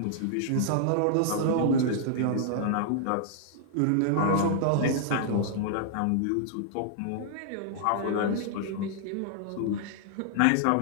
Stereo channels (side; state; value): both; different; correlation -0.01